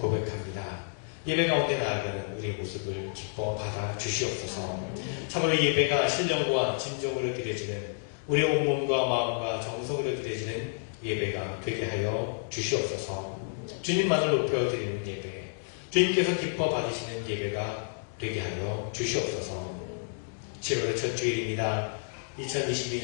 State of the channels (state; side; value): silent; right; digital silence